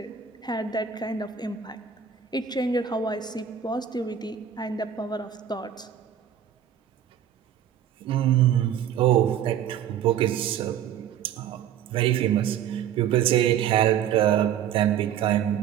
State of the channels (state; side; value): quieter; left; 9.4 dB